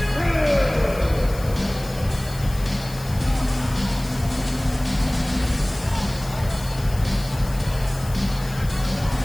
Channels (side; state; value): left; noise; hiss, 17 dB below the sound